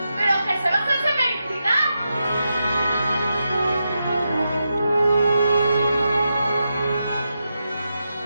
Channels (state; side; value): inverted; both; correlation -0.87